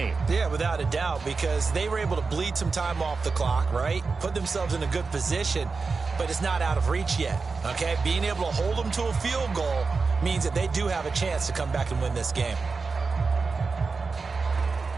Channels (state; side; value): quieter; left; 4.5 dB